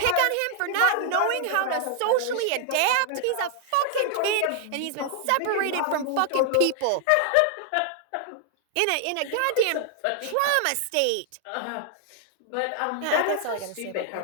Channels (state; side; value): different; both; correlation 0.00